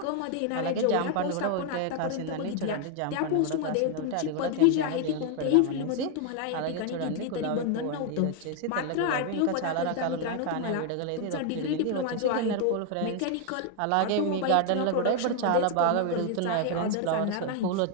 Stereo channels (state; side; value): different; both; correlation 0.00